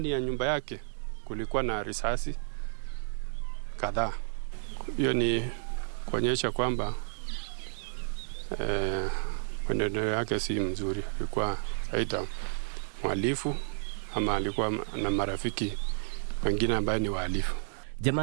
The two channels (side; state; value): left; silent; digital silence